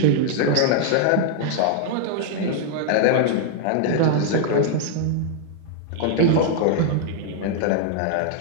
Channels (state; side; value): different; both; correlation -0.01